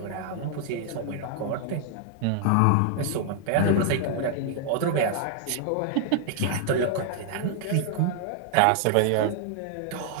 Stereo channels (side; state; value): both; different; correlation 0.00